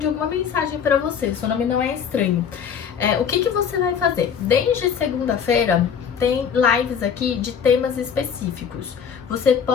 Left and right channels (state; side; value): quieter; right; 7.3 dB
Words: alguma mensagem para você. Seu nome não é estranho. O que você vai fazer? Desde segunda-feira tem lives aqui de temas específicos. Você